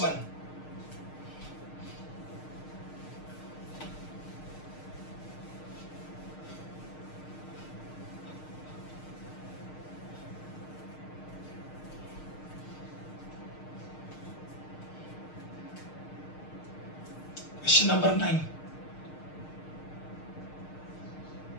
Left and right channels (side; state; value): right; late; 6.5 ms